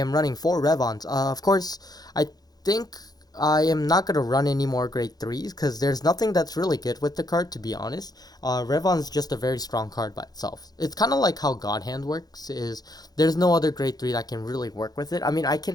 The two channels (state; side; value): late; right; 0.19 ms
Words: running 4 Revons. Of course, I think I am not going to run any more grade 3s because there's nothing that's really good with the card, to be honest. Revon's just a very strong card by itself. It's kind of like how God Hand works, is there's no other grade 3 that can really work with it. I mean, I